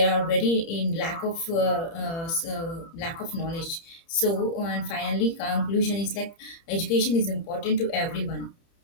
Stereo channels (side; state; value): right; late; 30 ms